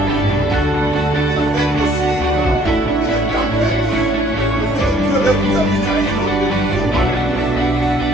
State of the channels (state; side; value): normal; both; correlation 0.60